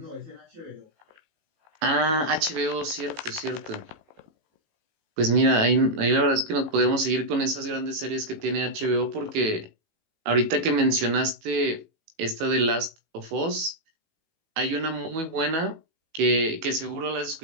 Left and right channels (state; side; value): late; left; 18 ms